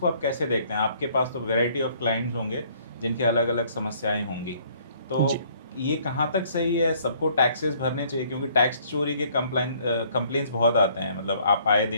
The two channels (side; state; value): both; inverted; correlation -0.61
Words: आप कैसे देखते हैं? आपके पास तो वैरायटी ऑफ क्लाइंट्स होंगे जिनके अलग अलग समस्याएं होंगी। तो जी। ये कहाँ तक सही है? सबको टैक्सेस भरने चाहिए? क्योंकि टैक्स चोरी के कंप्लेंट्स बहुत आते हैं, मतलब आप आए